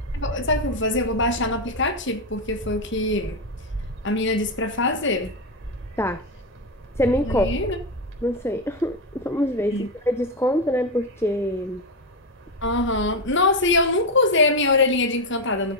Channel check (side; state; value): both; normal; correlation 0.08